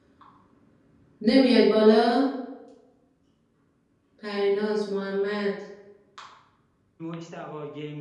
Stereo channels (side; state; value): both; identical; correlation 1.00